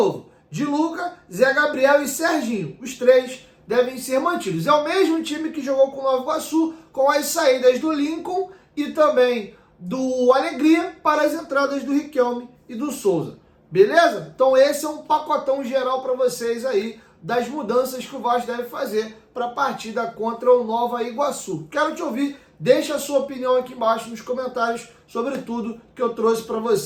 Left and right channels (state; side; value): identical; both; correlation 1.00